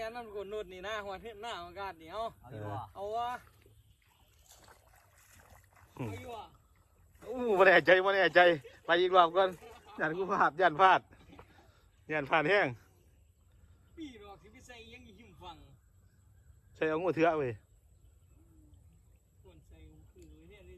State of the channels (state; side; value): identical; both; correlation 1.00